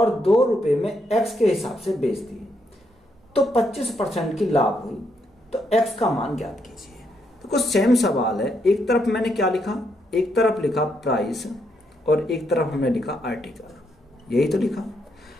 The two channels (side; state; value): both; normal; correlation 0.77